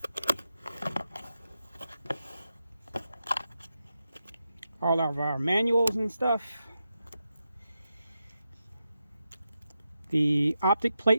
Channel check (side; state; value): both; inverted; correlation -0.88